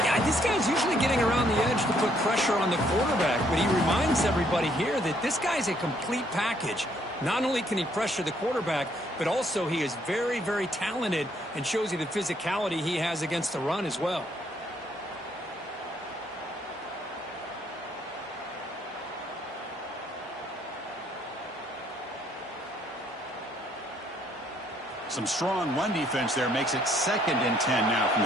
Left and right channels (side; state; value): both; normal; correlation 0.67